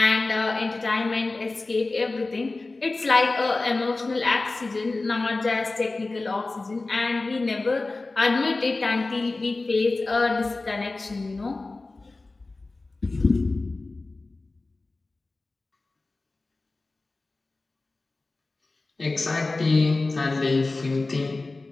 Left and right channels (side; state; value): right; quieter; 3.4 dB